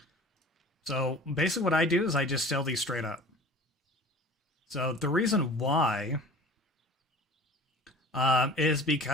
So basically what I do is I just sell these straight up. So the reason why is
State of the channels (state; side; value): normal; both; correlation 0.42